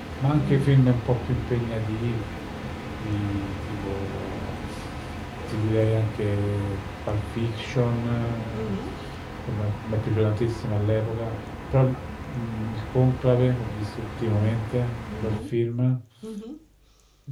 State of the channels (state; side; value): identical; both; correlation 1.00